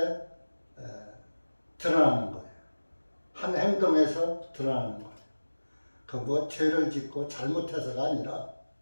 드러나는 거예요. 한 행동에서 드러나는 거예요. 그 뭐 죄를 짓고 잘못해서가 아니라,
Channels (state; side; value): inverted; both; correlation -1.00